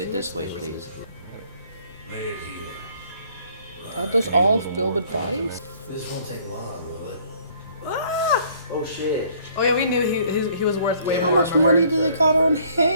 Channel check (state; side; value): inverted; both; correlation -0.59